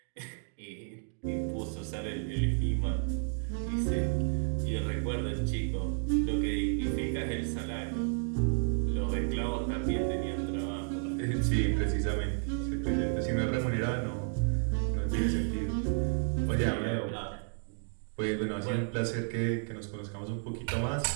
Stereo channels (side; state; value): left; silent; 56 dB below the other